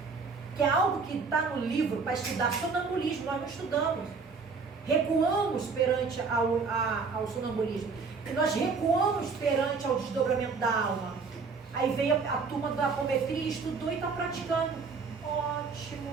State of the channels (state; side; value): quieter; left; 4.8 dB